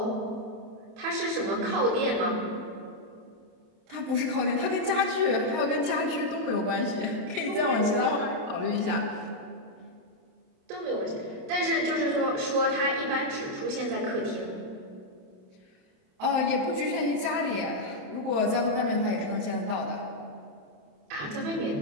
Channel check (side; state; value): left; late; 27 ms